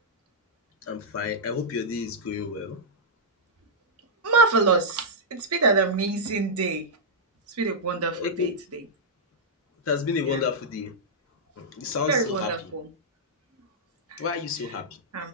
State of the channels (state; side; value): normal; both; correlation -0.09